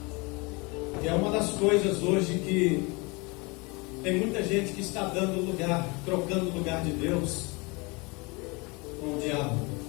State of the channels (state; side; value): quieter; right; 27.5 dB